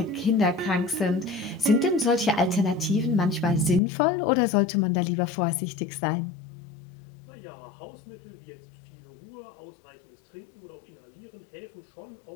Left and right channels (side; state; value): right; drops out; at 3.8 s